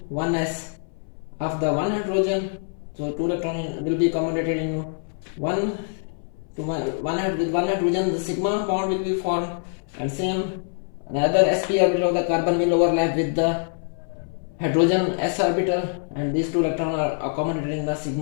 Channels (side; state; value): right; silent; 61 dB below the other